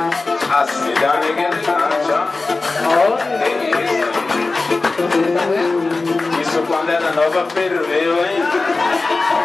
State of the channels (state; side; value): quieter; right; 3.6 dB